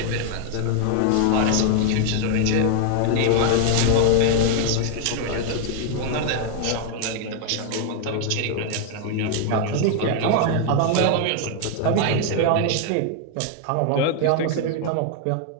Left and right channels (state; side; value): different; both; correlation 0.00